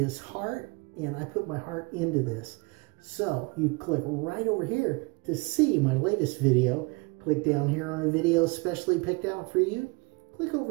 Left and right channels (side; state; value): left; quieter; 27.8 dB